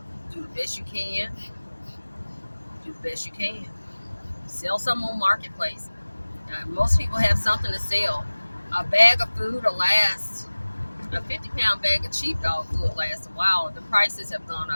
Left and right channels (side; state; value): both; inverted; correlation -1.00